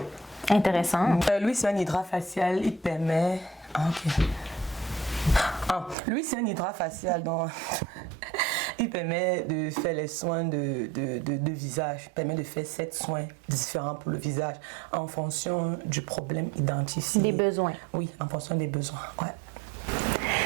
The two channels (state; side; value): drops out; left; at 6.0 s